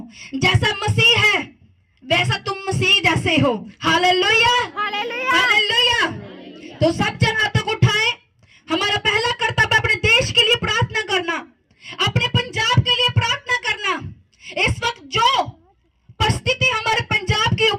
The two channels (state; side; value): identical; both; correlation 1.00